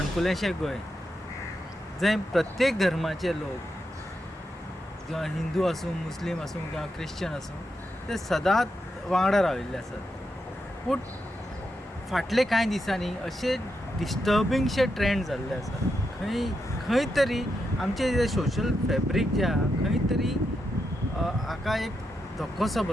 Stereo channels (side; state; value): both; normal; correlation 0.85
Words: संकुलेंशें गोंय जंय प्रत्येक धर्माचे लोक किंवा हिंदू आसूं मुस्लीम आसूं किंवा क्रिश्चन आसूं ते सदांच वांगडा राविल्ले आसात. पूण फाटले कांय दिसांनी अशे डिस्टर्बिंगशे ट्रेंड जाल्ले आसात. खंय तरी आमचे जे सोशल फॅब्रीक जे आहा खंय तरी हाका एक धक्कोसो